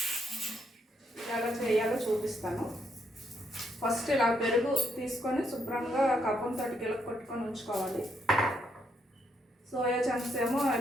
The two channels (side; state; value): both; normal; correlation 0.75